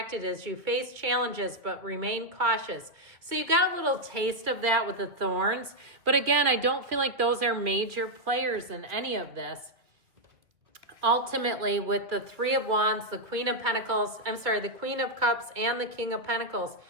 as you face challenges, but remain cautious. So you got a little taste of that with the thorns. But again, I don't feel like those are major players in any of this. Ultimately, with the Three of Wands, the Queen of Pentacles, the Queen of Cups and the King of Pentacles,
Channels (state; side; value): late; left; 2.4 ms